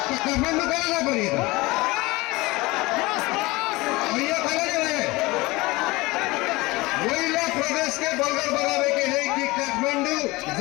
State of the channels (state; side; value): quieter; right; 21.9 dB